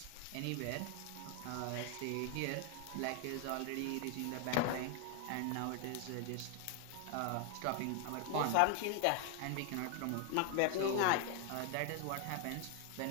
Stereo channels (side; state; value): both; different; correlation 0.00